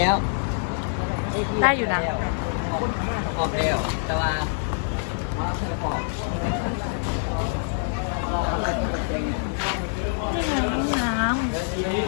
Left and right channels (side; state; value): right; silent; 62 dB below the other